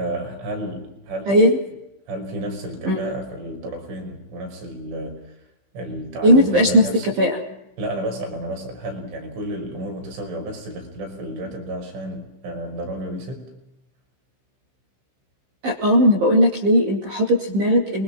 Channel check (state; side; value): late; left; 15 ms